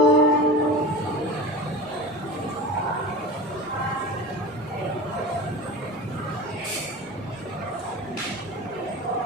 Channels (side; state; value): both; normal; correlation 0.32